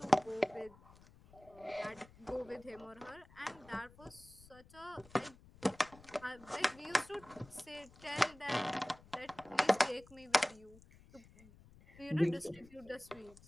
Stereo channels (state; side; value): noise; left; rumble, 23 dB below the sound